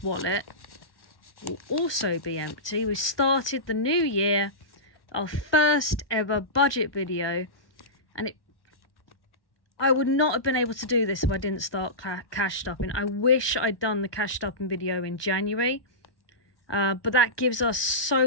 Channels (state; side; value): late; right; 1.2 ms